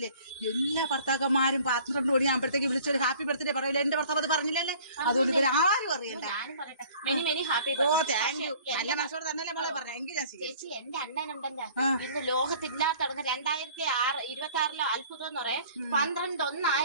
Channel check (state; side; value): inverted; both; correlation -0.51